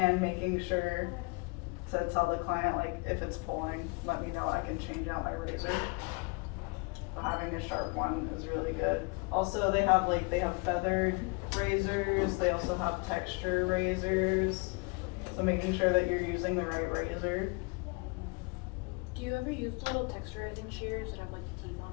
making sure to tell the client, like, if it's pulling, let me know, I can change out my razor. So having a sharp one is really good. Also, they have feathered razors, they also have texture razors, so making sure that you're using the right razor. Do you ever use the little texturizing shears that have like the teeth on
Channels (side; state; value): right; quieter; 30.4 dB